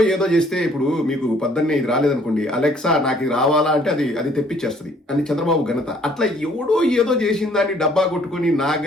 ఏదో చేస్తే, ఇప్పుడు మీకు పొద్దున్నే ఇది రాలేదనుకోండి, అలెక్సా నాకు ఇది రావాలా అంటే అది తెప్పించేస్తుంది అని చంద్రబాబు ఘనత. అట్లా ఎవడో ఏదో చేసిన దాన్ని డబ్బా కొట్టుకుని నా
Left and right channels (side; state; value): both; normal; correlation 0.60